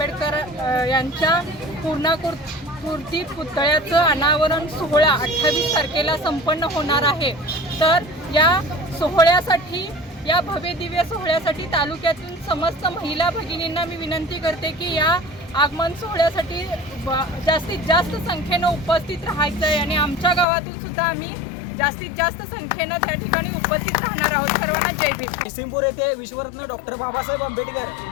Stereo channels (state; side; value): drops out; right; at 20.5 s